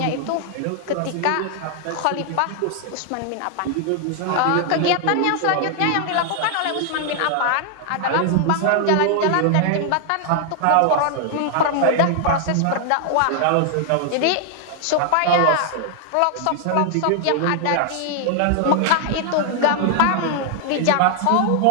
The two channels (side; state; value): both; different; correlation 0.00